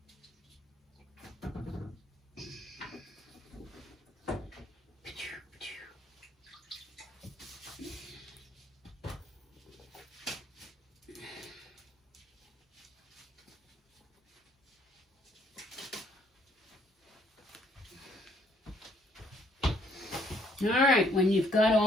All right, when you've got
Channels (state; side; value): normal; both; correlation 0.66